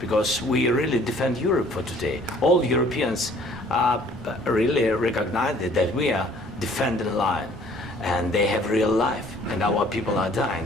we really defend Europe for today. All Europeans really recognize that we are defending the line and they have real life and our people are dying.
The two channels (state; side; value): normal; both; correlation 0.56